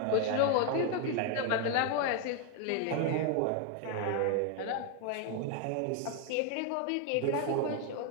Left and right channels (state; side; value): different; both; correlation 0.00